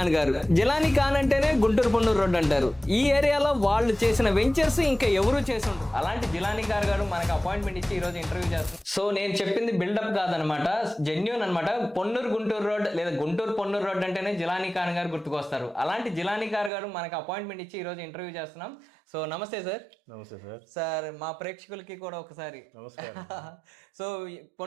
గారు. జిలానీ ఖాన్ అంటేనే గుంటూరు పొన్నూరు రోడ్ అంటారు. ఈ ఏరియాలో వాళ్ళు చేసిన వెంచర్స్ ఇంకా ఎవరు చేసి ఉండరు. అలాంటి జిలానీ ఖాన్ గారు మనకు అపాయింట్మెంట్ ఇచ్చి ఈ రోజు ఇంటర్వ్యూ చేస్తారు. సో నేను చెప్పింది బిల్డప్ కాదనమాట, జెన్యూన్ అనమాట. పొన్నూరు గుంటూరు రోడ్ లేదా గుంటూరు పొన్నూరు రోడ్ అంటేనే జిలానీ ఖాన్ గారు గుర్తుకొస్తారు. అలాంటి జిలానీ ఖాన్ గారు మనకు అపాయింట్మెంట్ ఇచ్చి ఈ రోజు ఇంటర్వ్యూ చేస్తున్నాం. సో నమస్తే సార్. నమస్తే సార్. సార్ మా ప్రేక్షకులకి కూడా ఒకసారి నమస్కారం. సో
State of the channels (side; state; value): left; drops out; at 16.7 s